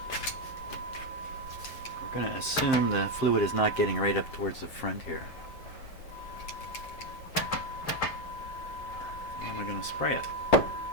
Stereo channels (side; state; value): right; late; 7.6 ms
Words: We're going to assume the fluid is not getting right up towards the front here. How am I going to spray it?